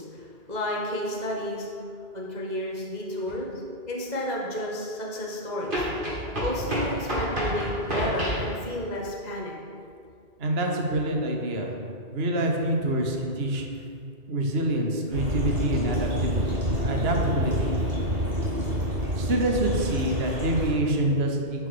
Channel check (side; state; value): left; late; 2.0 ms